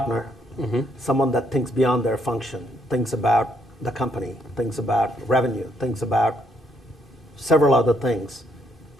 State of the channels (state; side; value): normal; both; correlation 0.71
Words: someone that thinks beyond their function, thinks about the company, thinks about revenue, thinks about several other things